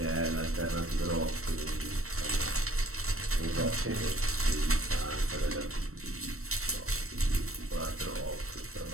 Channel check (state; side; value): late; left; 0.63 ms